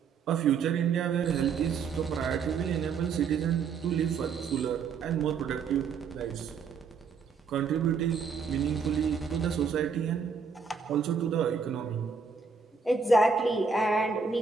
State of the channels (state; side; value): quieter; left; 5.6 dB